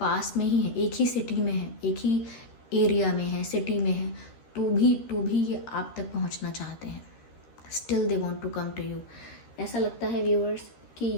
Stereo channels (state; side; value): late; right; 13 ms